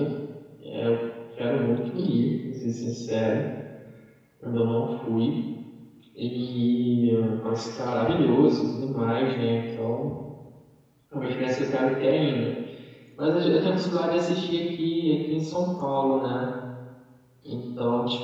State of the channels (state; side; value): identical; both; correlation 1.00